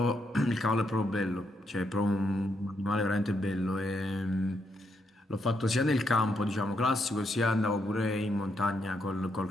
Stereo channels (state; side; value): normal; both; correlation 0.79